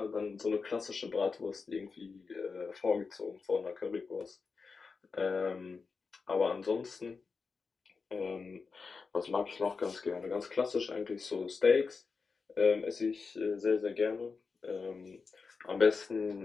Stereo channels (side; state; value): right; quieter; 4.8 dB